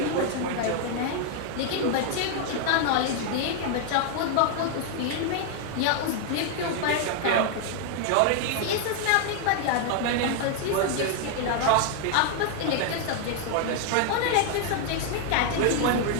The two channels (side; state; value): both; different; correlation 0.00